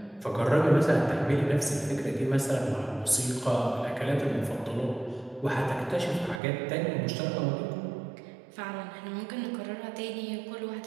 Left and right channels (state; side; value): drops out; left; at 6.4 s